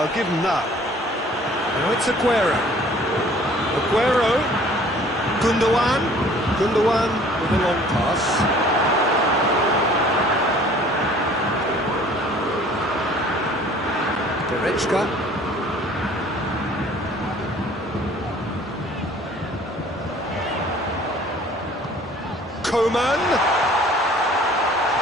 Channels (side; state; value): both; normal; correlation 0.52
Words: give him that. Now it's Aguero. Aguero. Gundogan. Gundogan with a long pass. Goretzka. Coman.